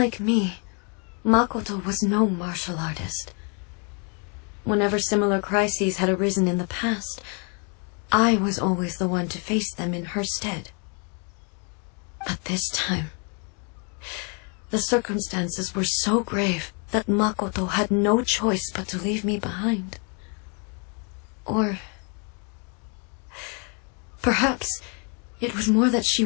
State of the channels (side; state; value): right; quieter; 37.3 dB